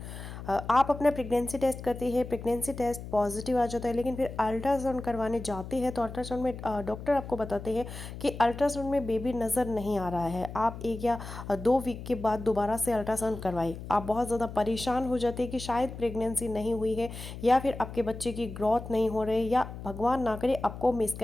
आप अपना प्रेगनेंसी टेस्ट करते हैं, प्रेगनेंसी टेस्ट पॉजिटिव आ जाता है, लेकिन फिर अल्ट्रासाउंड करवाने जाते हैं तो अल्ट्रासाउंड में डॉक्टर आपको बताते हैं कि अल्ट्रासाउंड में बेबी नज़र नहीं आ रहा है। आप 1 या 2 वीक के बाद दोबारा से अल्ट्रासाउंड करवाएं। आप बहुत ज़्यादा परेशान हो जाते हैं कि शायद प्रेगनेंसी नहीं हुई है या फिर आपके बच्चे की ग्रोथ नहीं हो रही या भगवान ना करे आपको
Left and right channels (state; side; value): noise; left; hum, 11 dB below the sound